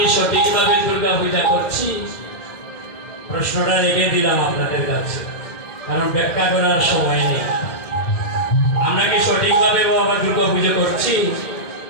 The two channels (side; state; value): right; late; 2.1 ms